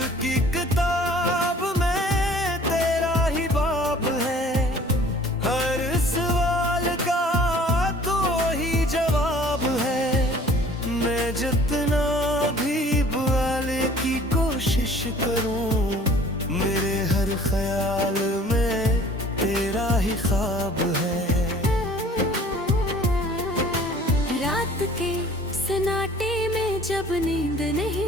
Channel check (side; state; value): both; normal; correlation 0.51